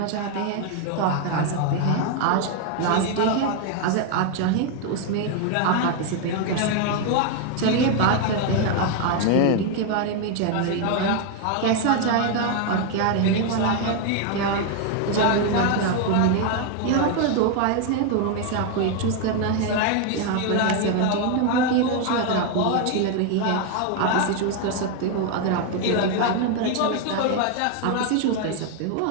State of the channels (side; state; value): both; different; correlation 0.01